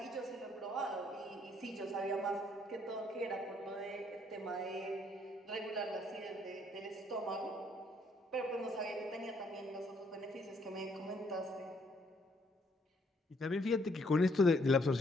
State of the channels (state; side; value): normal; both; correlation 0.68